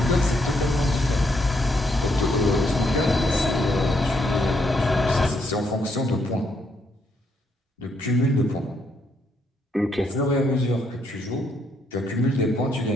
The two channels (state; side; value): normal; both; correlation 0.74